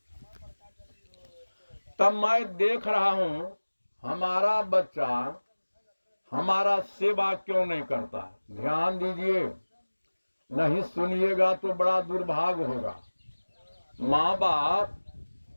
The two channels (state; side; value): inverted; both; correlation -1.00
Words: तब मैं देख रहा हूं हमारा बच्चा हमारा सेवा क्यों नहीं करता। ध्यान दीजिए, नहीं सुनिएगा तो बड़ा दुर्भाग्य होगा। माँ बाप